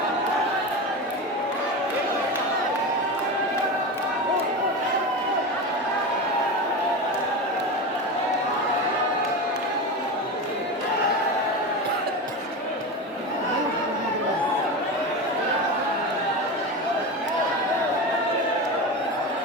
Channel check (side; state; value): both; normal; correlation 0.23